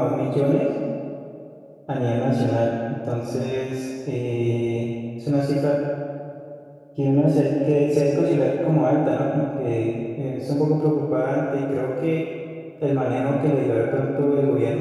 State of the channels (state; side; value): identical; both; correlation 1.00